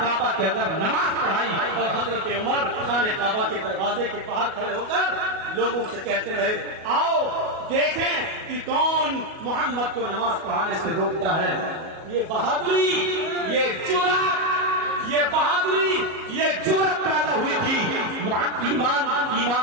کے اندر نماز پڑھائی اور حضرت عمر خانہ کعبہ کے دروازے کے باہر کھڑے ہو کر لوگوں سے کہتے رہے آؤ دیکھیں کہ کون محمد کو نماز پڑھانے سے روکتا ہے. یہ بہادری, یہ جرأت, یہ بہادری, یہ جرأت پیدا ہوئی تھی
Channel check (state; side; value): late; left; 37 ms